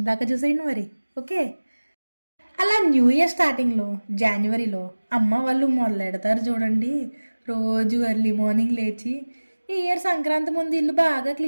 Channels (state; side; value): inverted; both; correlation -1.00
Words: దాకా చూసేయండి మరి. ఓకే, అలా న్యూ ఇయర్ స్టార్టింగ్లో జనవరిలో అమ్మ వాళ్ళు మొదలెడతారు చూడండి. రోజు ఎర్లీ మార్నింగ్ లేచి ఈ ఇయర్ సంక్రాంతి ముందు ఇల్లు బాగా